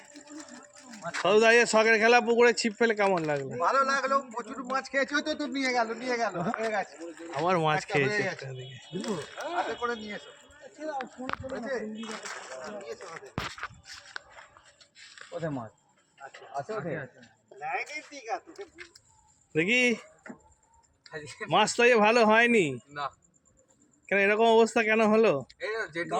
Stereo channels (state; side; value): identical; both; correlation 1.00